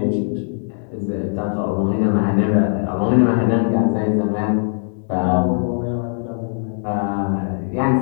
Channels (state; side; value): silent; right; digital silence